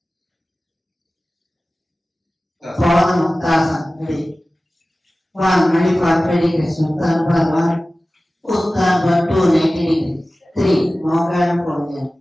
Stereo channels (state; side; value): normal; both; correlation 0.97